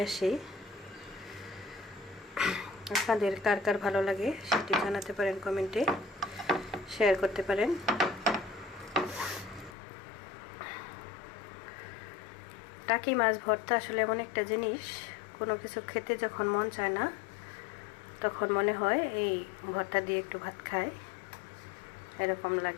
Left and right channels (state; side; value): drops out; right; at 9.8 s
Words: আসি। আপনাদের কার কার ভালো লাগে সেটি জানাতে পারেন, কমেন্টে শেয়ার করতে পারেন। টাকি মাছ ভর্তা আসলে এমন একটা জিনিস, কোনো কিছু খেতে যখন মন চায় না তখন মনে হয় এই ভর্তা দিয়ে একটু ভাত খাই, এরকম